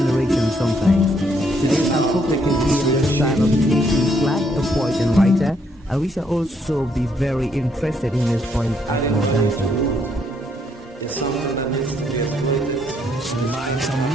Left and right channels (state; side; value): normal; both; correlation 0.72